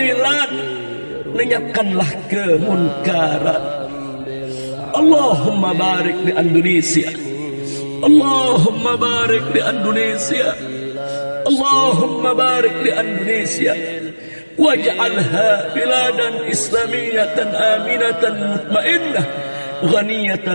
lenyapkanlah kemunkaran. Allahumma barik di Indonesia, Allahumma barik di Indonesia, Allahumma barik di Indonesia, waj'alha biladan islamiyatan aminatan mutmainnah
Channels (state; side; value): inverted; both; correlation -1.00